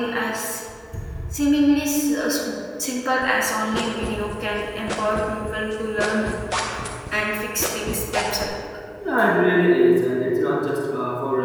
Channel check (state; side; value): identical; both; correlation 1.00